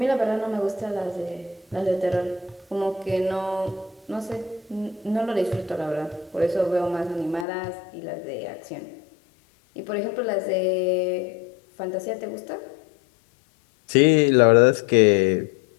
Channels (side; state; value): right; drops out; at 7.5 s